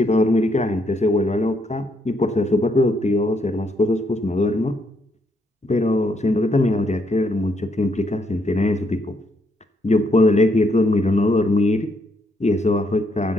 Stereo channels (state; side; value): normal; both; correlation 0.74